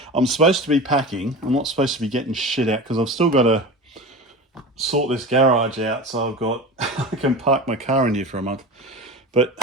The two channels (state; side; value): normal; both; correlation 0.31